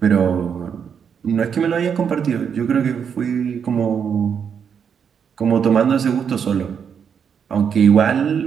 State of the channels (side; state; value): left; quieter; 7.3 dB